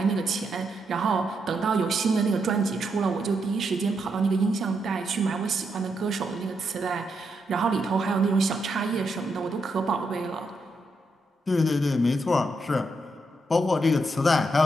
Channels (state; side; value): normal; both; correlation 0.81